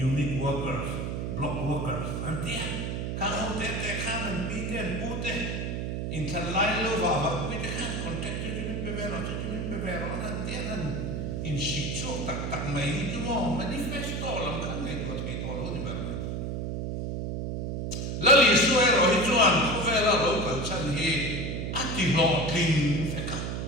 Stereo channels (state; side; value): noise; right; hum, 3 dB below the sound